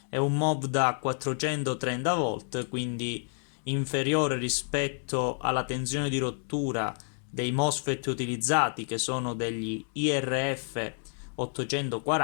È un MOV da 430 volt, quindi inferiore rispetto alla tensione di rottura dei MOSFET utilizzati, che sono degli IRF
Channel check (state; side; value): silent; right; 58 dB below the other